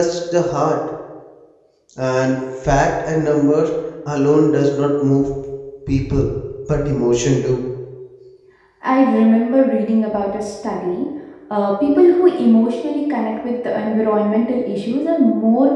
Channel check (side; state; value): both; identical; correlation 1.00